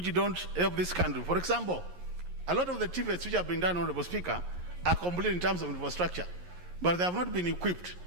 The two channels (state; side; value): late; left; 11 ms